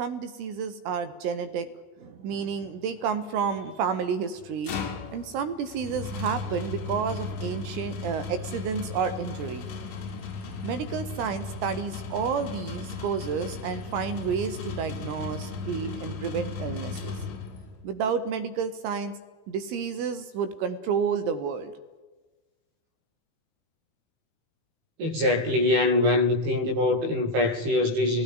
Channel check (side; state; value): left; late; 18 ms